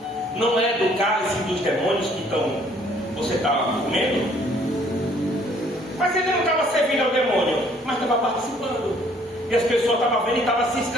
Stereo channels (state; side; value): normal; both; correlation 0.61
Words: não é do cálice dos demônios que você está comendo? Mas ele não estava servindo ao demônio, mas estava participando. E as pessoas estavam vendo e estavam se